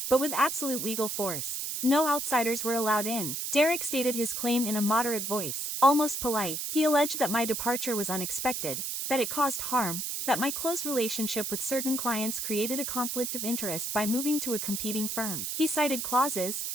but with absolute legal force. No outsiders were allowed in. Derek stated his claim in a moderate voice, almost polite. He alleged that my departure was unexpected, that it caused harm, that my close relationship with certain clients created a conflict of interest by moving to a competing firm. He cited clauses,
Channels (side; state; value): right; noise; hiss, 3 dB below the sound